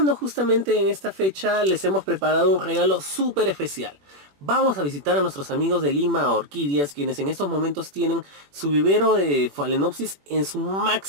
justamente en esta fecha, les hemos preparado un regalo súper especial. Vamos a visitar a nuestros amigos de Lima Orquídeas, quienes en estos momentos tienen su vivero de Phalaenopsis en su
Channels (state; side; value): late; left; 21 ms